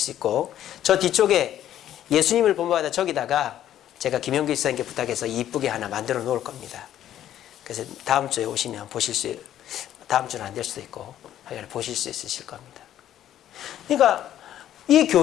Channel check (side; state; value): right; quieter; 11.6 dB